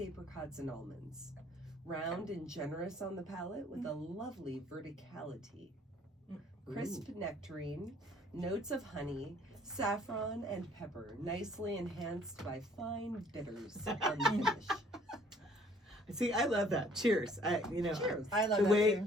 and almonds. Round and generous on the palate with a lovely verticality. Crisp nectarine, notes of honey, saffron, and pepper, nicely enhanced by fine bitters on the finish. See, I love that. Cheers. Cheers. I love The that way, too.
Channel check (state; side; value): normal; both; correlation 0.58